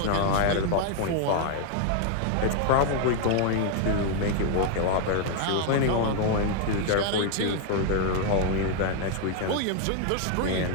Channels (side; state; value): both; different; correlation 0.00